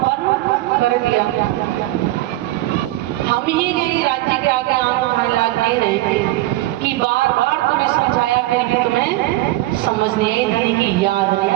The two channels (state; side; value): quieter; left; 17.1 dB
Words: कर दिया। हम ही नहीं राज्य के आगे आंखों फैला नहीं रहे कि बार बार तुम्हें समझाया, फिर भी तुम्हें समझ नहीं आई, धनी की याद नहीं